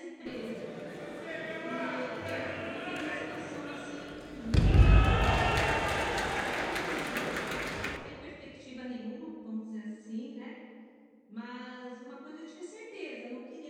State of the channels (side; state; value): both; identical; correlation 1.00